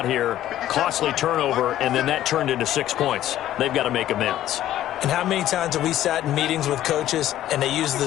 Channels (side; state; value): right; quieter; 13.0 dB